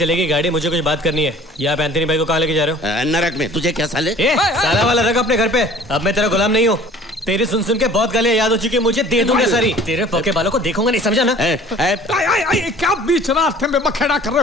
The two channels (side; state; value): both; normal; correlation 0.49